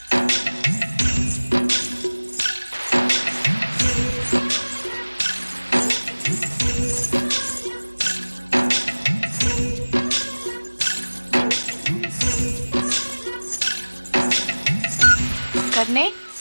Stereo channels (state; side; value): inverted; both; correlation -1.00